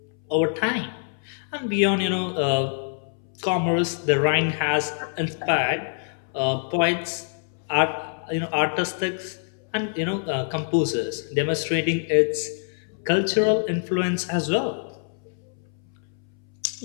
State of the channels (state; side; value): silent; right; 61 dB below the other